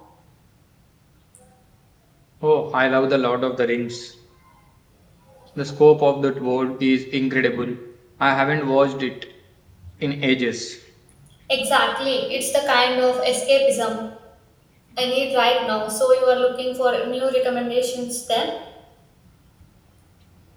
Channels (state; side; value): identical; both; correlation 1.00